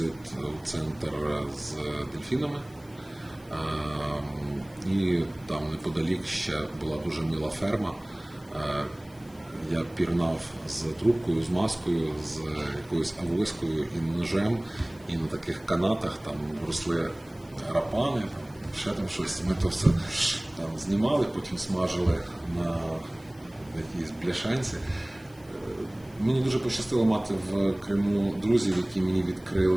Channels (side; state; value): left; noise; hiss, 27 dB below the sound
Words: у центр з дельфінами. І там неподалік ще була дуже мила ферма. Я пірнав з трубкою, з маскою, з якоюсь авоською і ножем, і на таких канатах там росли рапани, ще там щось. Ми то все там знімали, потім смажили на якійсь бляшанці. Мені дуже пощастило мати в Криму друзів, які мені